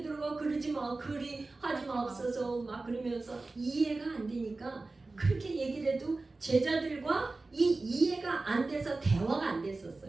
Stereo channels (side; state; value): left; quieter; 3.4 dB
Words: 그러지 마, 그리 하지 마옵소서 막 그러면서 이해가 안 되니까 그렇게 얘기를 해도 제자들과 이해가 안 돼서 대화가 안